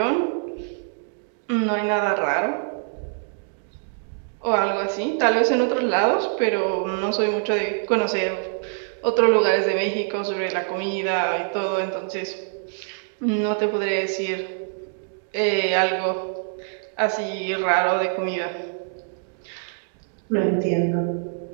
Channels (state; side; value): silent; left; digital silence